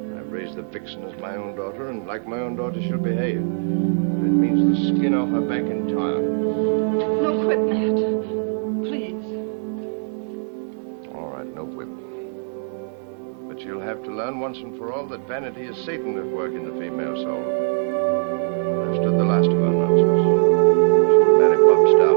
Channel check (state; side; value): silent; left; 64 dB below the other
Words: I've raised the vixen as my own daughter, and like my own daughter she'll behave. If it means the skin off her back entire. No quit, Matt. Please. All right, no whip. But she'll have to learn once and for all that vanity is Satan at work in the female soul. I've stood the last of her nonsense. She'll marry Bob